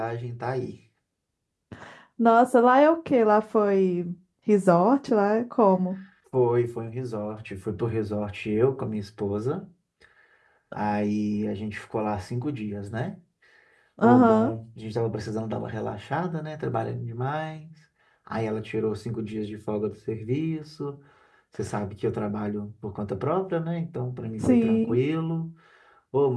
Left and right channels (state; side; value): identical; both; correlation 1.00